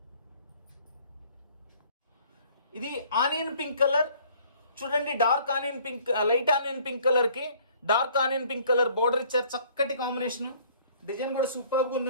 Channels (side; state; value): both; inverted; correlation -0.57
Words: ఇది ఆనియన్ పింక్ కలర్. చూడండి dark onion pink, light onion pink colour కి dark onion pink colour border ఇచ్చారు. చక్కటి కాంబినేషన్. డిజైన్ కూడా సూపర్గా